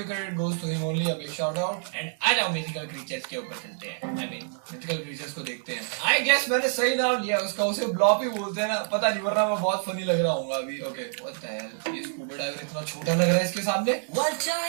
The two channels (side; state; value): left; silent; 60 dB below the other